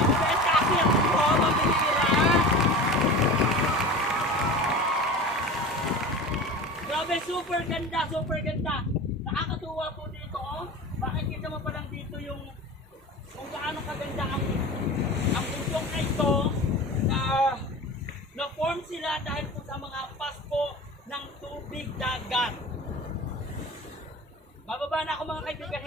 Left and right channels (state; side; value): normal; both; correlation 0.34